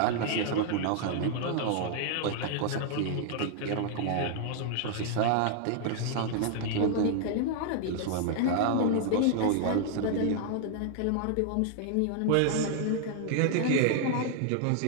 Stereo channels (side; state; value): both; different; correlation 0.00